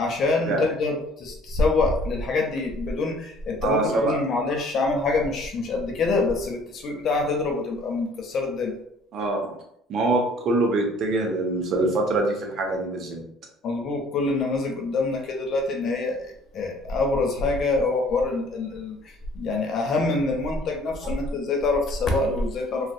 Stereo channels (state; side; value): normal; both; correlation 0.56